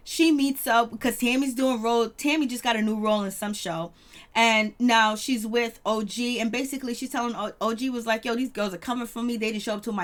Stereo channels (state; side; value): identical; both; correlation 1.00